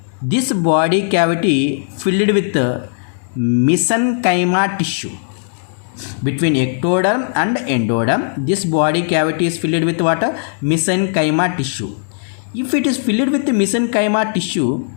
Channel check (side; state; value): right; silent; digital silence